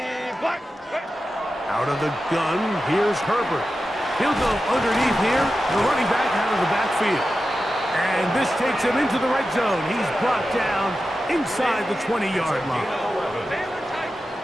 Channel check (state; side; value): normal; both; correlation 0.92